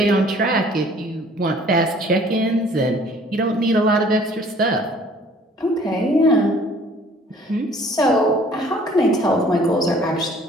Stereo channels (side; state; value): both; normal; correlation 0.55